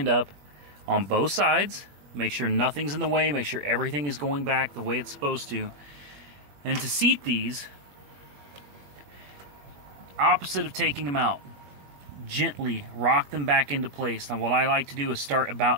up on both sides. Make sure nothing's in the way, make sure everything is going back the way it's supposed to. And to seat these, opposite of taking them out, gently rock them back into place. Now what I like to do is start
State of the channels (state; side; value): late; left; 21 ms